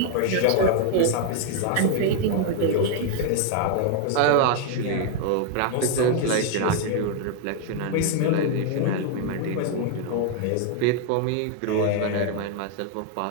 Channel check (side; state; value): both; different; correlation 0.00